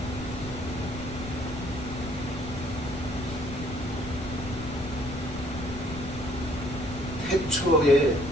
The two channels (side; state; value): left; noise; rumble, 11 dB below the sound